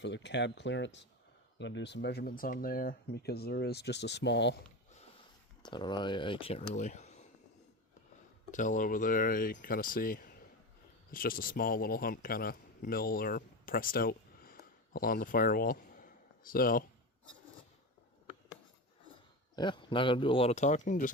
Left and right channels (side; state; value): both; normal; correlation 0.22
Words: the cab clearance. I'm going to do some measurements on there because there is just a small, I don't know, I can't really tell over there. You kind of see it's just a small little hump kind of mill or pressed out along the firewall. So, yeah, not going to do a lot of talking,